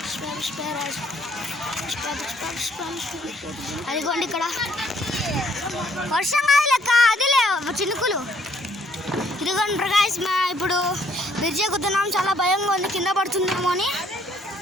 అదిగోండి ఇక్కడ వర్షం కాదు లెక్క, అదిలే చినుకులు. ఇదిగోండి ప్రకాష్ ఇప్పుడు బ్రిడ్జ్ ఎక్కుతున్నాం. చాలా భయంగా ఉంది కింద పడుతుందేమో అని,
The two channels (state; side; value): normal; both; correlation 0.64